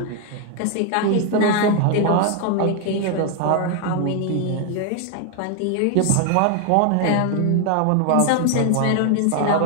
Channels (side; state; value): both; different; correlation 0.00